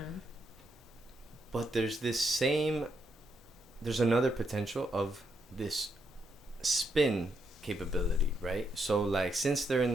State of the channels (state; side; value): normal; both; correlation 0.78